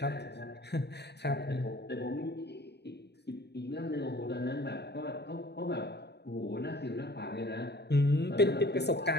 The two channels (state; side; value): late; right; 0.49 ms